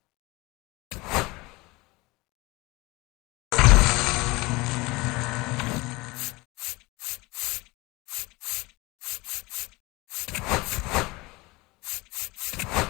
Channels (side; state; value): right; quieter; 23.1 dB